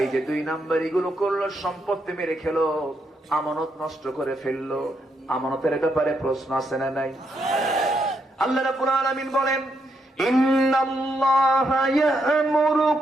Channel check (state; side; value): normal; both; correlation 0.79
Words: যে 2 নম্বর এগুলো করলো, সম্পত্তি মেরে খেলো, আমানত নষ্ট করে ফেললো। আমানতের ব্যাপারে প্রশ্ন আছে না নাই? আল্লাহ রাব্বুল আলামিন বলেন, ইন্নাল্লাহা